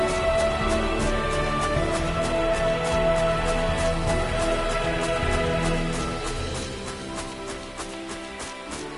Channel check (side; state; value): both; identical; correlation 1.00